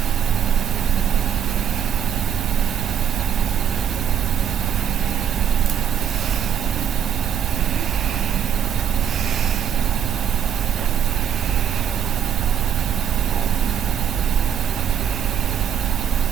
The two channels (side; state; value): left; quieter; 8.4 dB